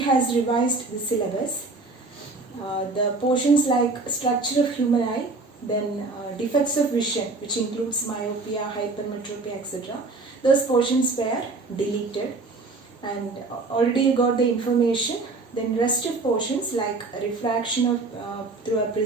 has revised the syllabus. The portions like structure of human eye, then defects of vision, which includes myopia, hypermetropia, etc. Those portions were deleted, and already you got the information. Then rest of portions like refraction of through a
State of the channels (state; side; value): quieter; left; 3.6 dB